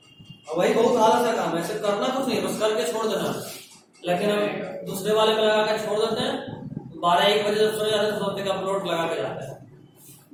और वही बहुत आलस का काम है, ऐसे करना कुछ नहीं, बस करके छोड़ देना। लेकिन हम दूसरे वाले पे लगा के छोड़ देते हैं, 12-1 बजे जब सोने जाते हैं तो सोचते हैं कि अपलोड लगा के जाते हैं,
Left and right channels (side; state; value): both; identical; correlation 1.00